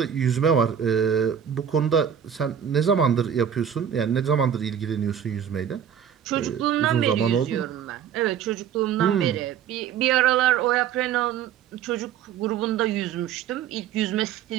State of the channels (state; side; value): quieter; left; 8.7 dB